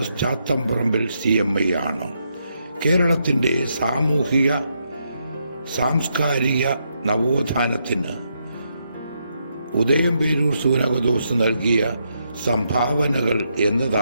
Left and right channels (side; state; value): both; inverted; correlation -0.79